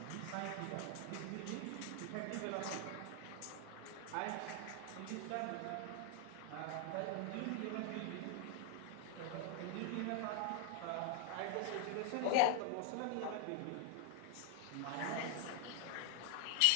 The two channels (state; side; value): different; both; correlation 0.00